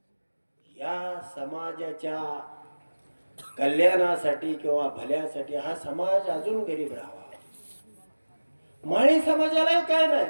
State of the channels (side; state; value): both; inverted; correlation -1.00